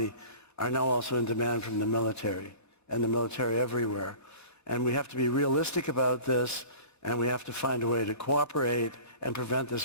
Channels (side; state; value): right; late; 4.1 ms